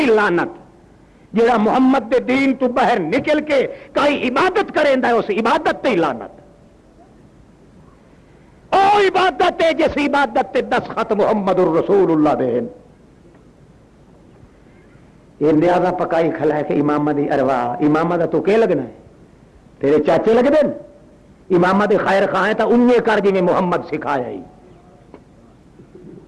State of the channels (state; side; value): identical; both; correlation 1.00